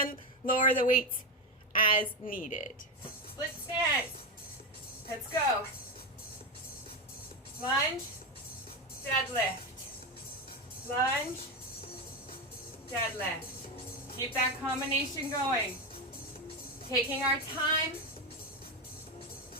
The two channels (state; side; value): normal; both; correlation 0.12